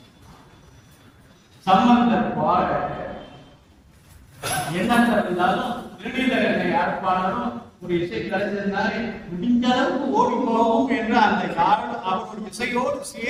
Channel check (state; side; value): identical; both; correlation 1.00